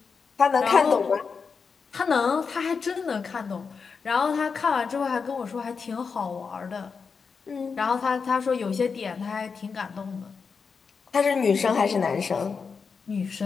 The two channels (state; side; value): quieter; right; 5.4 dB